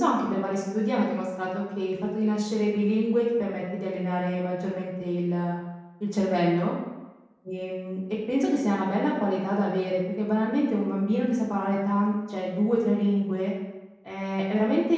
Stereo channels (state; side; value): identical; both; correlation 1.00